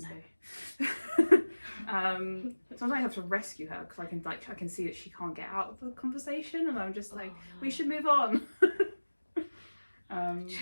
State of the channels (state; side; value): inverted; both; correlation -1.00